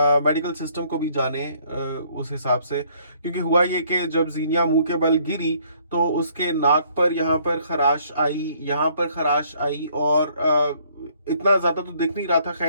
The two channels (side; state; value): both; inverted; correlation -0.64